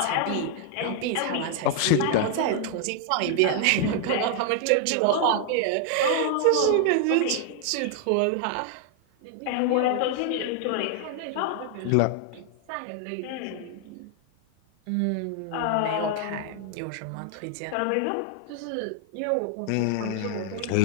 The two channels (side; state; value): both; different; correlation 0.00